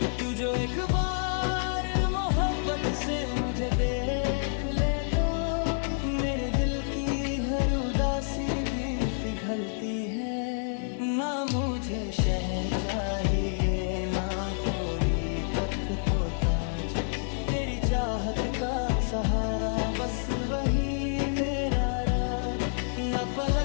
तू जो एक बार मोहब्बत से मुझे देख ले तो मेरे दिल की हर उदासी भी पिघलती है। ना मुझे शहर चाहिए ना कोई तख्त तो ताज, तेरी चाहत का सहारा बस वही मेरा राज। न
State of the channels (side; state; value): right; silent; digital silence